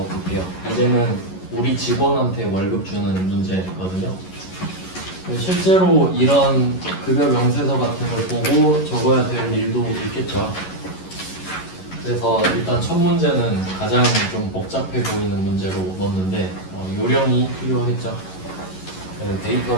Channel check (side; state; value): right; late; 11 ms